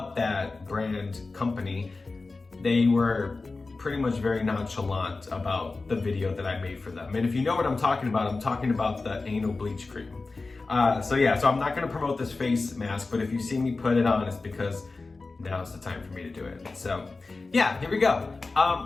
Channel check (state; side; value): quieter; right; 3.7 dB